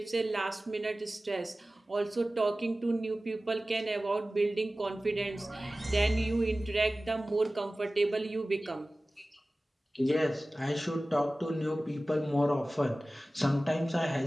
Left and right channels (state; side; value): normal; both; correlation 0.97